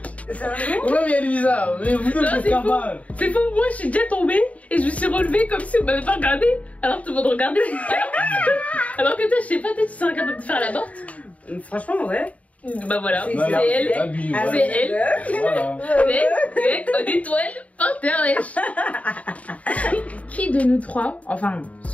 Sérieux? Ouais, mais elle est bizarre. Mais vous deux, Non, vous êtes c'est faux. capable. C'est faux, moi je suis déjà tombée et je me suis relevée comme si on m'avait pas regardé. Alors tout le monde regardait. Alors que toi, je sais pas, toi tu serais capable de faire la morte. Franchement, ouais. Bah voilà, C'est c'est elle. Abus, Ah, C'est elle. Voilà. Mec, en étoile, par terre, wesh. Qui de nous trois, enfin,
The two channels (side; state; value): right; late; 0.068 ms